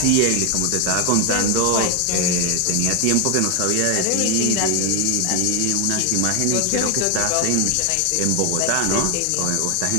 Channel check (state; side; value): different; both; correlation 0.01